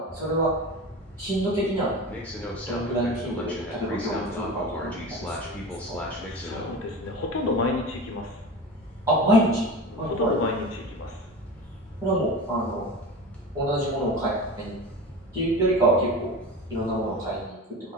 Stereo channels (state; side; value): normal; both; correlation 0.30